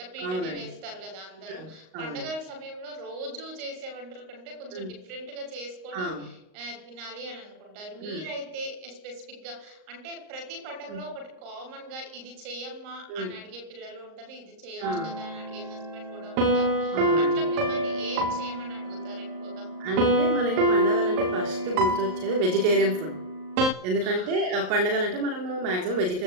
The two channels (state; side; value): late; left; 38 ms